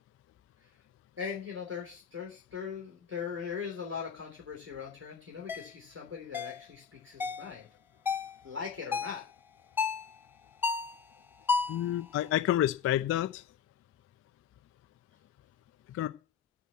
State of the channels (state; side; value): quieter; right; 7.7 dB